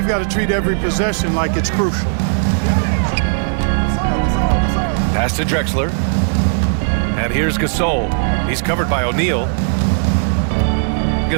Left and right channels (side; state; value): left; silent; digital silence